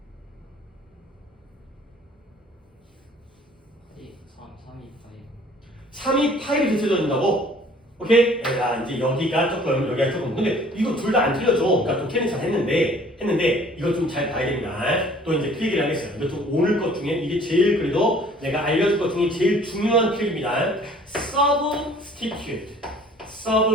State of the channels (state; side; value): normal; both; correlation 0.54